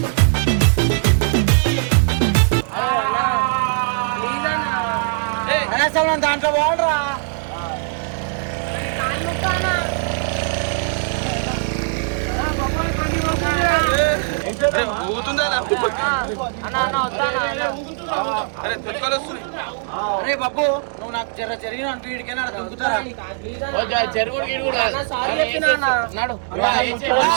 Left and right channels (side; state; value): left; silent; 66 dB below the other